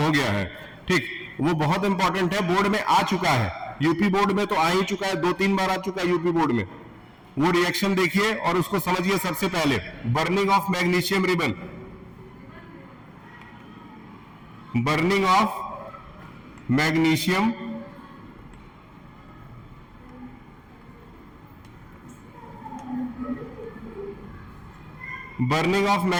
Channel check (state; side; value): identical; both; correlation 1.00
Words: हो गया है। ठीक, वो बहुत इंपॉर्टेंट है, बोर्ड में आ चुका है। यूपी बोर्ड में तो आ ही चुका है, 2-3 बार आ चुका है यूपी बोर्ड में। वो रिएक्शन देखिए और उसको समझिए। सबसे पहले burning of magnesium ribbon, burning of magnesium